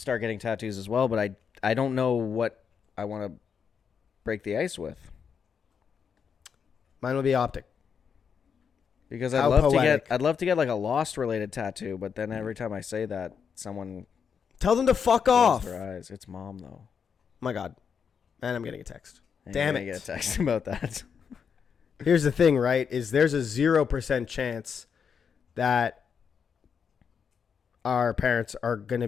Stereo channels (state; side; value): quieter; right; 6.7 dB